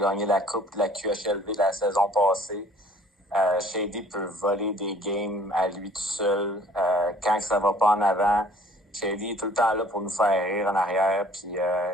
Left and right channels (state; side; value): normal; both; correlation 0.55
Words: la coupe de la QHLV la saison passée. Shady peut voler des games à lui tout seul. Quand ça va pas en avant, Shady est tout le temps là pour nous faire rire en arrière. Puis